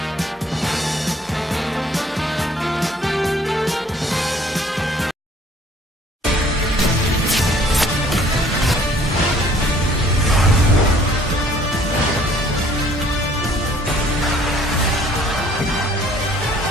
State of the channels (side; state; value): both; normal; correlation 0.58